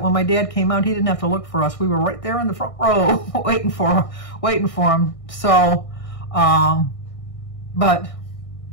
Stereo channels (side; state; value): right; late; 1.6 ms